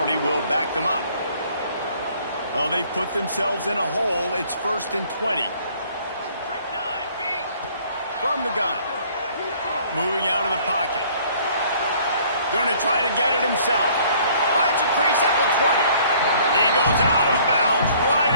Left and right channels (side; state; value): both; inverted; correlation -0.57